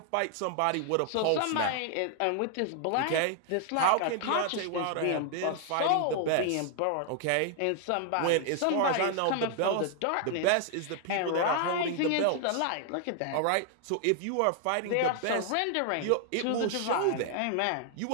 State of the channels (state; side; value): different; both; correlation 0.00